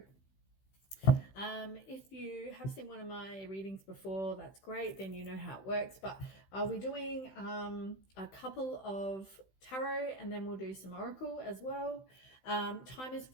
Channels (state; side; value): late; right; 16 ms